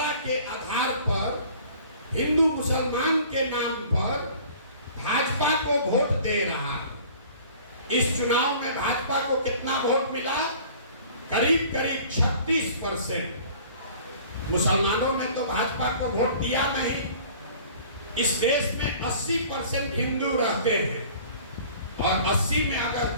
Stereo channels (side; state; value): both; inverted; correlation -0.48